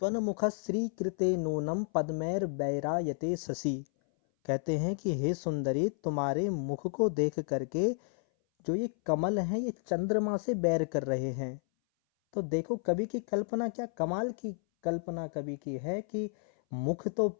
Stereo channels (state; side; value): silent; right; 57 dB below the other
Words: त्वन्मुख श्रीकृते नूनम पद्मैर बैरायते शशि। कहते हैं कि हे सुंदरी, तुम्हारे मुख को देख करके जो ये कमल हैं ये चंद्रमा से बैर कर रहे हैं। तो देखो कवि की कल्पना क्या कमाल की कल्पना कवि की है कि मुख तो